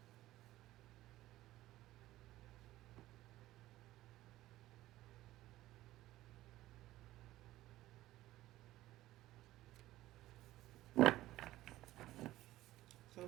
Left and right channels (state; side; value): quieter; left; 15.8 dB